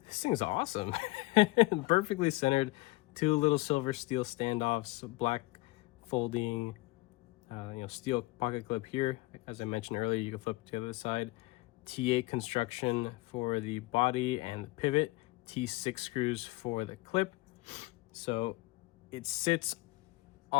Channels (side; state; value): right; quieter; 21.5 dB